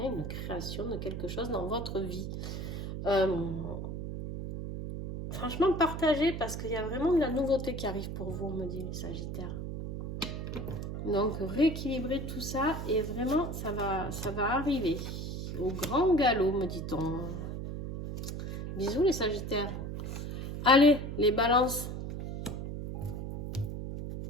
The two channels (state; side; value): noise; right; hum, 5 dB below the sound